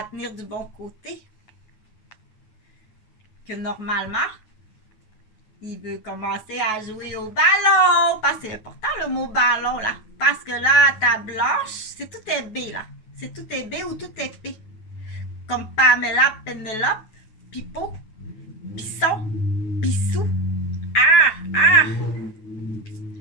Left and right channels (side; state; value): right; late; 9.3 ms